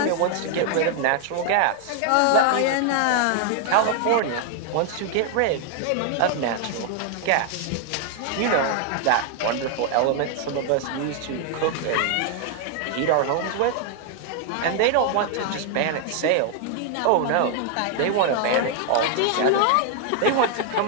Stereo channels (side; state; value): both; different; correlation 0.00